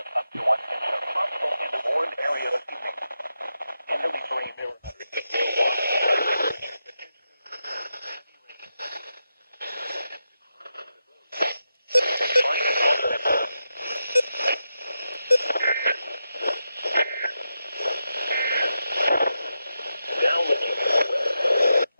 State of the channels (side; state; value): both; inverted; correlation -0.88